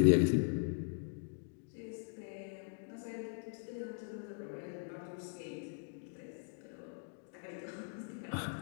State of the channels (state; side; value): silent; right; digital silence